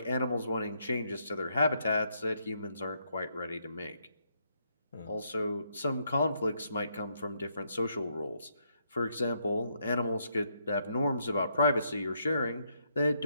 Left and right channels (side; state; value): both; inverted; correlation -0.76